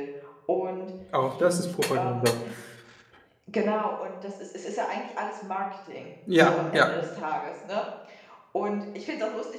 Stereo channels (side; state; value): both; identical; correlation 1.00